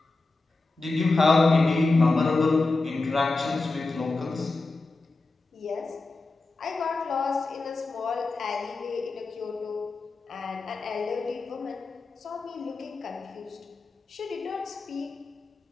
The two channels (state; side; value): quieter; right; 3.5 dB